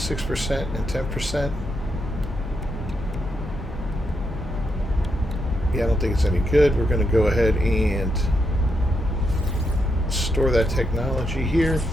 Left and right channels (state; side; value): normal; both; correlation 0.82